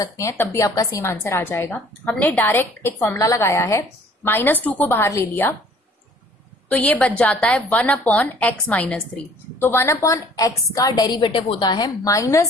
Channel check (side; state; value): both; normal; correlation 0.54